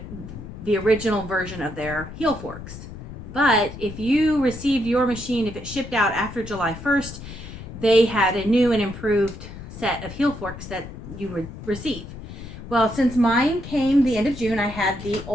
the original version of their heel forks. But if you received your machine, if it shipped out after July 1st, they had a new and improved set of heel forks that you would receive. Well, since mine came the end of June, I had the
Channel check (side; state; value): left; noise; rumble, 12 dB below the sound